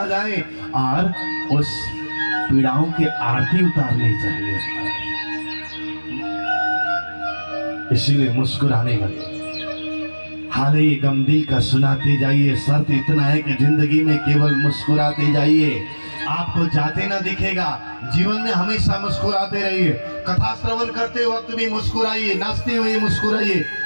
जाए, और उस पीड़ाओं की आरती उतारनी चाहिए। इसीलिए मुस्कुराने लगे। हाल ही गम दिल का सुनाते जाइए। शर्त इतना है कि जिंदगी में केवल मुस्कुराते जाइए। आपको जाते ना दिखेगा, जीवन में हमेशा मुस्कुराते रहिए। कथा श्रवण करते वक्त भी मुस्कुराइए, नाचते हुए मुस्कुराइए,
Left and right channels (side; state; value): both; inverted; correlation -1.00